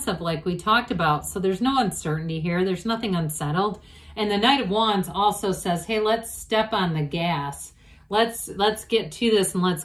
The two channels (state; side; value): identical; both; correlation 1.00